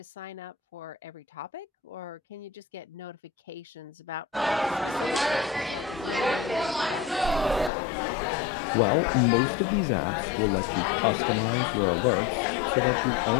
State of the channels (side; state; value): right; drops out; at 7.7 s